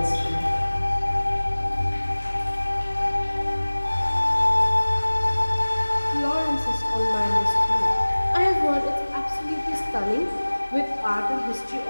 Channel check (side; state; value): both; inverted; correlation -1.00